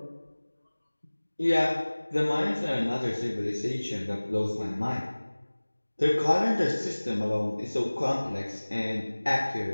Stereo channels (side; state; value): both; inverted; correlation -1.00